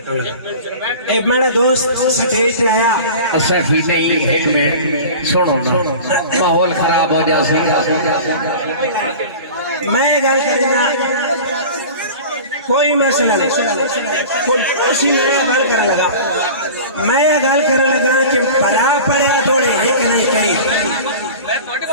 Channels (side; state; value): both; inverted; correlation -0.37